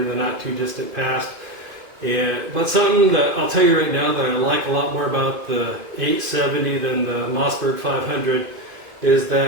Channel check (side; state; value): left; late; 2.5 ms